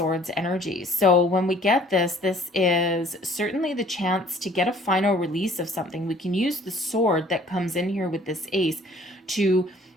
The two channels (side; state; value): both; normal; correlation 0.55